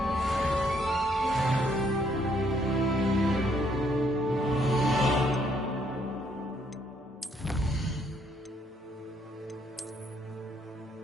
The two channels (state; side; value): normal; both; correlation 0.70